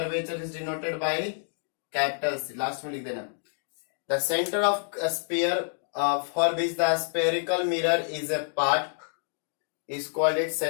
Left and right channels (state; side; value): silent; right; digital silence